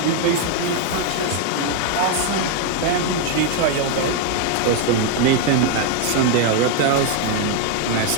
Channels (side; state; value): both; different; correlation 0.01